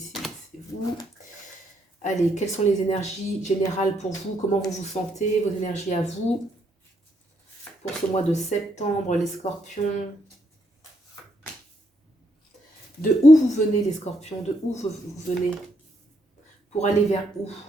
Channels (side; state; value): both; normal; correlation 0.75